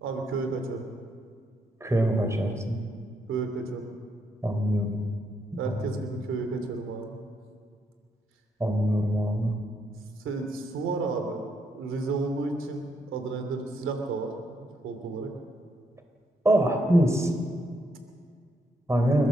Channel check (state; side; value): normal; both; correlation 0.77